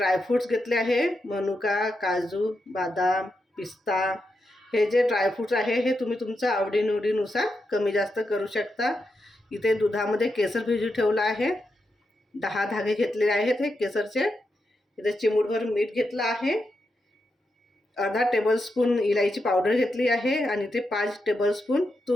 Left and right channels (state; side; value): normal; both; correlation 0.85